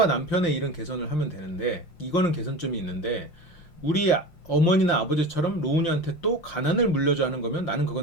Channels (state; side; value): late; right; 5.6 ms